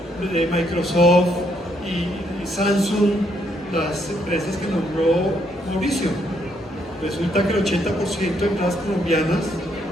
de Microsoft y Samsung, las empresas que nombró Mauricio. Resulta que el 80% de empresas colombianas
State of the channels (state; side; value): normal; both; correlation 0.73